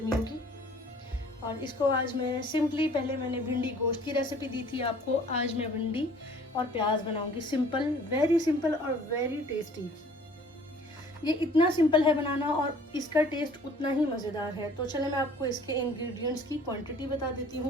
की। और इसको आज मैं सिंपली, पहले मैंने भिंडी गोश्त की रेसिपी दी थी आपको, आज मैं भिंडी और प्याज बनाऊंगी। सिंपल, वेरी सिंपल और वेरी टेस्टी। ये इतना सिंपल है बनाना और इसका टेस्ट उतना ही मज़ेदार है। तो चले मैं आपको इसके इंग्रेडिएंट्स की क्वांटिटी बता देती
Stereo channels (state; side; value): normal; both; correlation 0.53